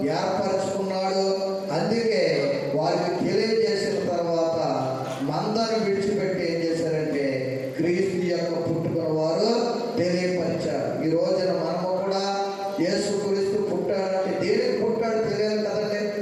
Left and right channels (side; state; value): both; identical; correlation 1.00